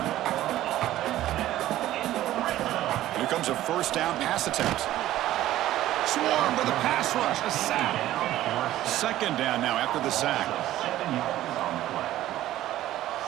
Here comes a first down pass attempt. Swarmed by the pass rush, a sack. Second down now after the sack. 7 yards on the play.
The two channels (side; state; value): left; quieter; 14.2 dB